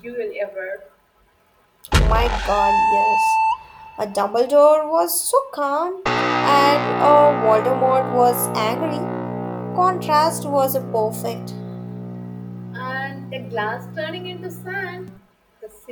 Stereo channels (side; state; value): both; identical; correlation 1.00